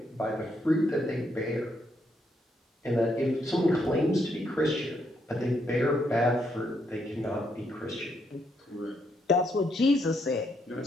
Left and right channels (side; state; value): both; normal; correlation 0.76